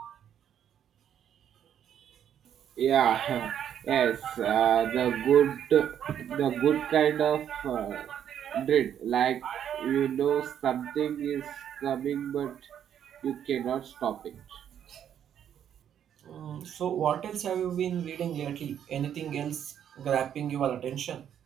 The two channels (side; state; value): left; quieter; 9.5 dB